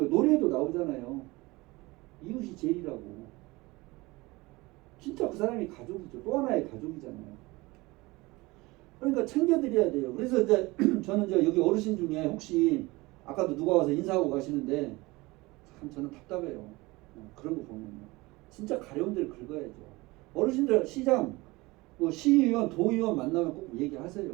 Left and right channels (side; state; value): left; quieter; 22.2 dB